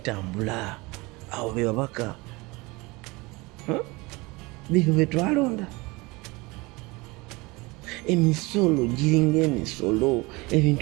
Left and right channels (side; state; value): left; quieter; 24.1 dB